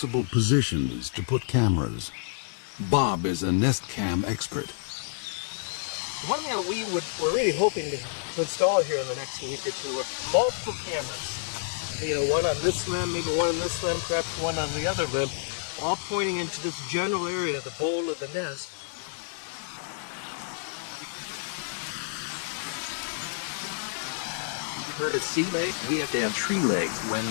positions to put cameras. Bob is a nest cam expert. One thing that we're really hoping to install here in the next week or two are multiple cameras. You know, one on this limb, maybe one on this limb, perhaps one on the other limb, all pointing into this general area, the bowl of the nest. You heard of sea legs? We have to have tree legs when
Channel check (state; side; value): silent; right; digital silence